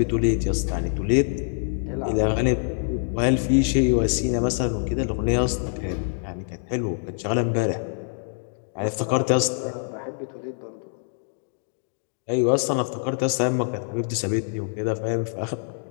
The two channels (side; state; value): right; silent; 62 dB below the other